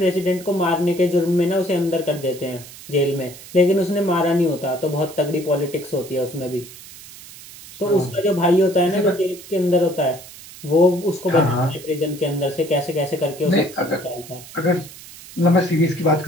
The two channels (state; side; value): noise; right; hiss, 17 dB below the sound